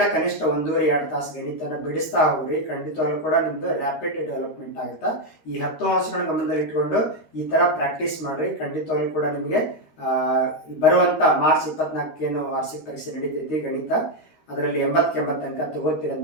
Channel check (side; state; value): right; late; 13 ms